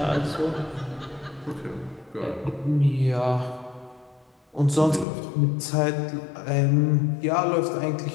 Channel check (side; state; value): right; drops out; at 5.1 s